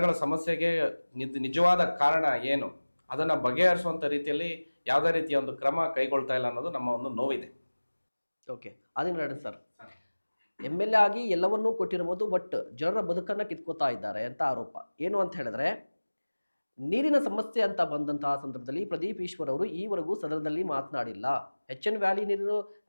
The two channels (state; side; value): inverted; both; correlation -1.00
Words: ಸಮಸ್ಯೆಗೆ ನಿಜವಾದ ಕಾರಣ ಏನು ಅದನ್ನು ಬಗೆಹರಿಸುವಂಥ ರೀತಿಯಲ್ಲಿ ಯಾವುದೇ ರೀತಿಯ ಒಂದು ಕ್ರಮ ಕೈಗೊಳ್ತಾ ಇಲ್ಲ ಅನ್ನೋದು ನಮ್ಮ ಒಂದು ನೋವಿದೆ. ಓಕೆ, ಅದೇನು ಸರ್, MLA ಆಗಿ ಎಲ್ಲವನ್ನೂ ಕೊಟ್ಟಿರ್ಬೋದು, ಬಟ್ ಜನರ ಬದುಕನ್ನು ಕಿತ್ಕೋತಾ ಇದ್ದಾರೆ ಅಂತ ಆರೋಪ. ಏನು ಅಂತ ಹೇಳಿದ್ರೆ, ನೀರಿನ ಸಮಸ್ಯೆ ಅಂತ ಬಂದಂತಹ ಸಂದರ್ಭದಲ್ಲಿ ಪ್ರದೀಪ್ ಈಶ್ವರ್ ಅವರು ಈವರೆಗೂ ಸದನದಲ್ಲಿ ಮಾತನಾಡಿಲ್ಲ. HN ವ್ಯಾಲಿ